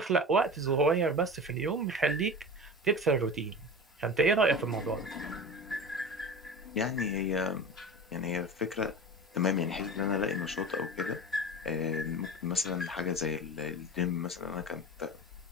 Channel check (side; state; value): both; normal; correlation 0.32